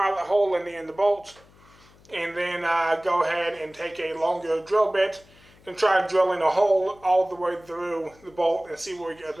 hole in the bolt, and then go ahead and take a longer drill bit and try drilling a hole all the way through the bolt and see where we get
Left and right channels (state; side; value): noise; left; hum, 27 dB below the sound